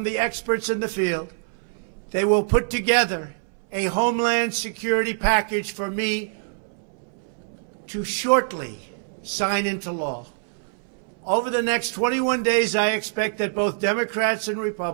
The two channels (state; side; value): silent; left; 62 dB below the other